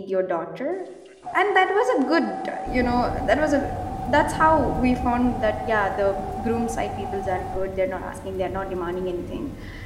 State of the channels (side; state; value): both; identical; correlation 1.00